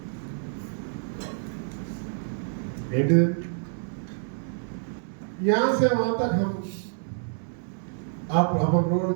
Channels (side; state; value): left; silent; 60 dB below the other